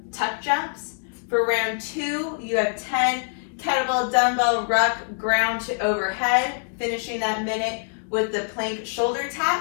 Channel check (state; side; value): silent; right; 62 dB below the other